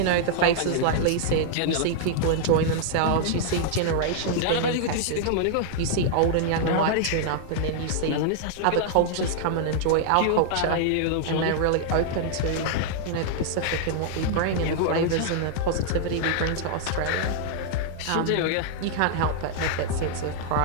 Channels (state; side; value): different; both; correlation -0.01